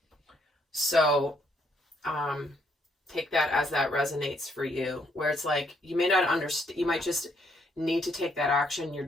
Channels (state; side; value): normal; both; correlation 0.71